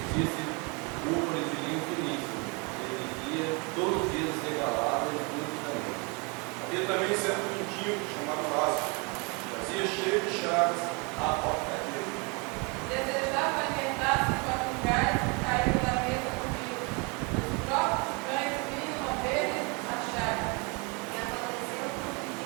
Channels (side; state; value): left; quieter; 31.2 dB